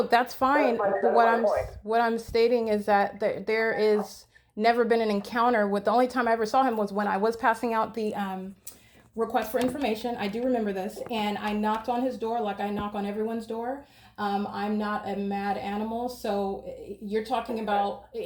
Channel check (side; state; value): both; identical; correlation 1.00